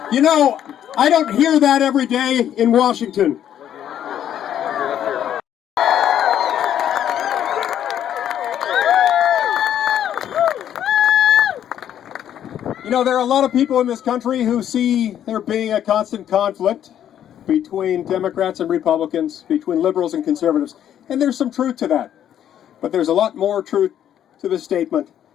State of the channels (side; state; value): right; quieter; 10.3 dB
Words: You know, I don't hear that every day in Washington. You know, there are a lot of people in this country who see there being a constant conflict between Democrats and Republicans, between liberals and conservatives, and there's some truth to that. But there's a lot more truth to the statement